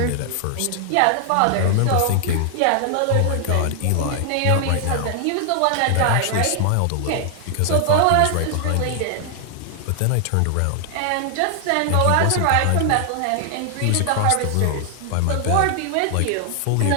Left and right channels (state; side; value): different; both; correlation 0.00